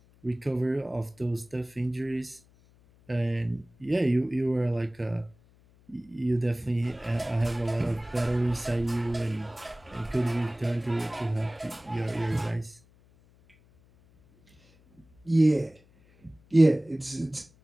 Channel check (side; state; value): left; noise; hum, 29 dB below the sound